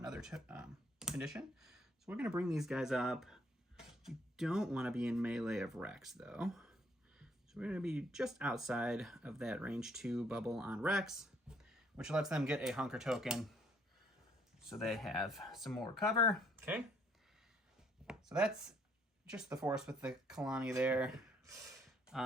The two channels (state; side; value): normal; both; correlation 0.66